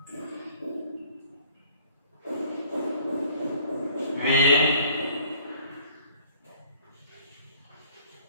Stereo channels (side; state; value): both; inverted; correlation -0.56